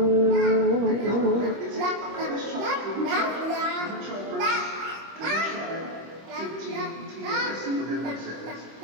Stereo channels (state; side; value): late; left; 25 ms